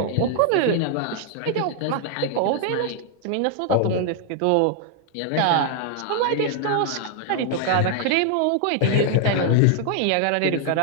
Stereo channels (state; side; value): different; both; correlation 0.00